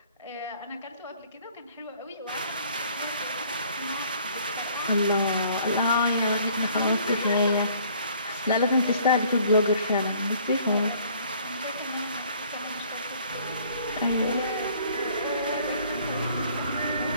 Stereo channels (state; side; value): inverted; both; correlation -0.58